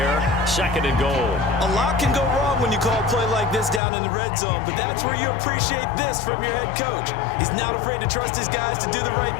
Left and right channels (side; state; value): right; drops out; at 3.8 s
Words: 2nd and goal. A lot can go wrong when you call a play like this down in the red zone, but that's where you appreciate this from your head coach. He's not afraid to trust his guys to do the right